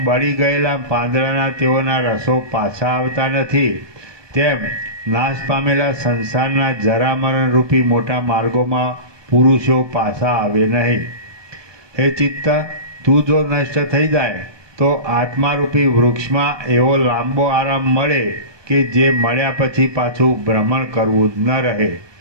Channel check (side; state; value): left; late; 1.2 ms